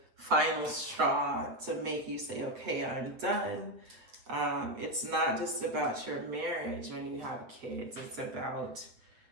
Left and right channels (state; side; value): late; left; 7.9 ms